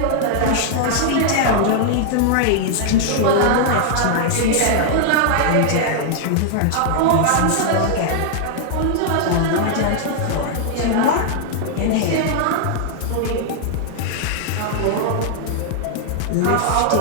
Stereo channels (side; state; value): both; different; correlation -0.01